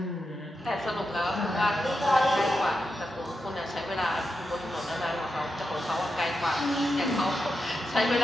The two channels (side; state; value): both; normal; correlation 0.88